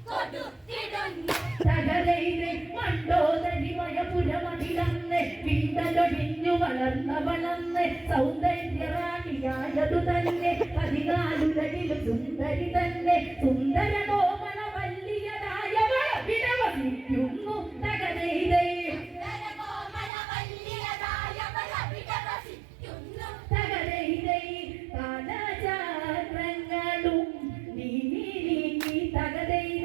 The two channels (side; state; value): left; drops out; at 20.1 s